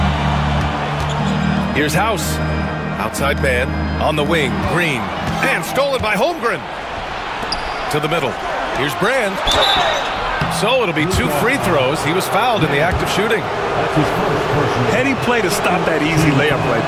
Here's House. Outside man. On the wing. Green. And stolen by Holmgren. To the middle. Here's Brand. So it'll be 2 free throws. He was fouled in the act of shooting. Heady play to stop that easy layup right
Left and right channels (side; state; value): both; identical; correlation 1.00